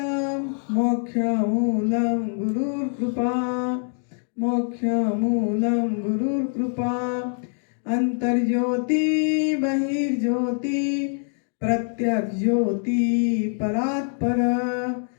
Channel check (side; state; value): right; silent; 59 dB below the other